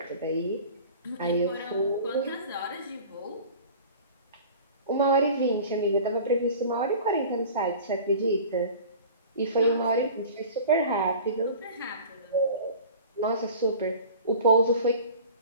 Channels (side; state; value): both; inverted; correlation -0.41